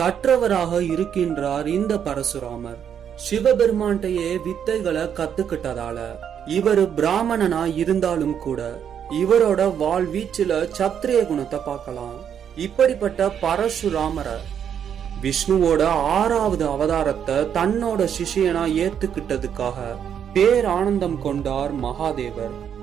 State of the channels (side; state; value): left; quieter; 8.5 dB